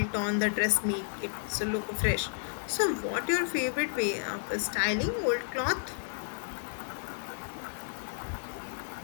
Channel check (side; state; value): right; silent; digital silence